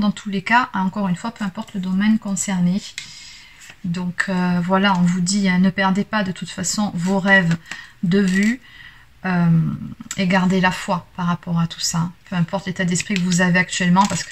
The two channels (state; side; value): identical; both; correlation 1.00